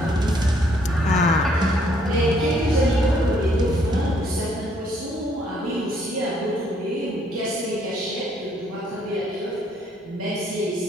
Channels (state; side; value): normal; both; correlation 0.67